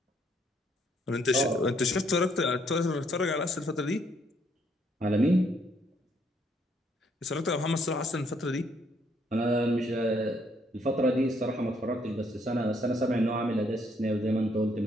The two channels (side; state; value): both; normal; correlation 0.69